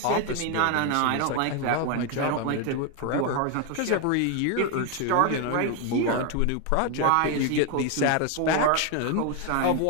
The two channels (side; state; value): both; different; correlation 0.01